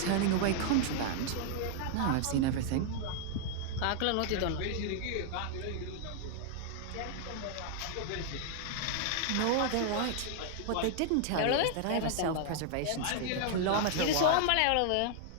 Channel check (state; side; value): different; both; correlation 0.00